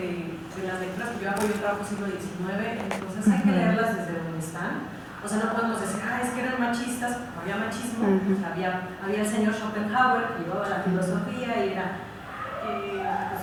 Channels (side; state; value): both; identical; correlation 1.00